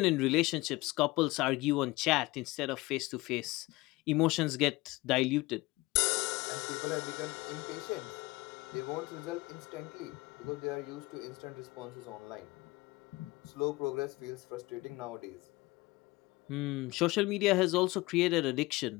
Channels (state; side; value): quieter; right; 21.3 dB